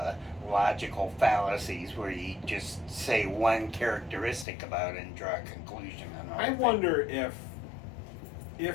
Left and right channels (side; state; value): right; drops out; at 4.5 s